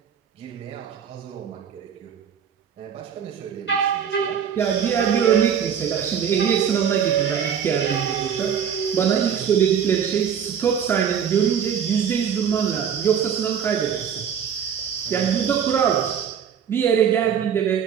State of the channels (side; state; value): left; quieter; 8.0 dB